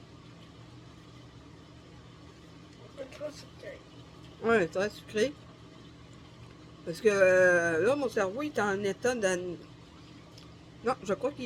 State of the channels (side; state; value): both; identical; correlation 1.00